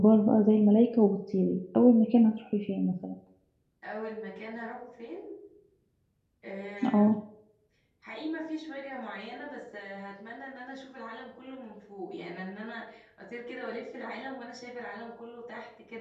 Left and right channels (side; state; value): both; identical; correlation 1.00